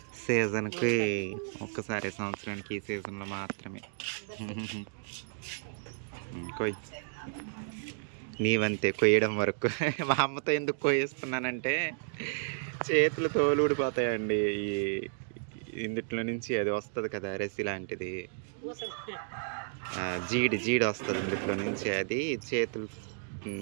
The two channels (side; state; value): left; silent; digital silence